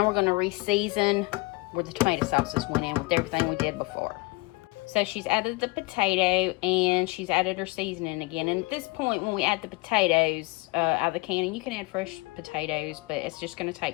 we're going to re-season where the tomato sauces went in with everything we did before. So she's added the potato, and she's added her seasoning again. And at this point, when we add the potatoes out of the can, and you can add fresh potatoes, but it's just going to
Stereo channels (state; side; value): quieter; right; 24.7 dB